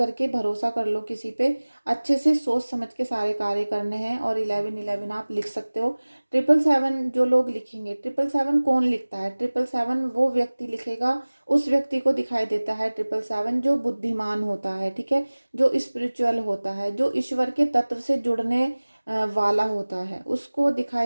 भरोसा कर लो किसी पे। अच्छे से सोच समझ के सारे कार्य करने हैं। और 1111 आप लिख सकते हो। 777 जो लोग लिखेंगे, 777 कौन लिखता है? 777 वो व्यक्ति लिखेगा, उस व्यक्ति को दिखाई देता है 777 जो बुद्धिमान होता है, ठीक है, जो स्पिरिचुअल होता है, जो ईश्वर के तत्व से जुड़ने वाला होता है, उसको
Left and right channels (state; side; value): inverted; both; correlation -1.00